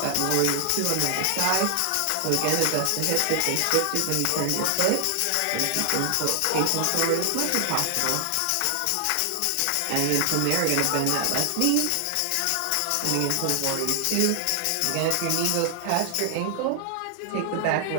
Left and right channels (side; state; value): both; different; correlation 0.00